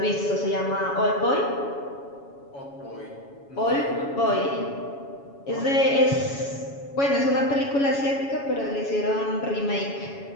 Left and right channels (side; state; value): right; late; 7.2 ms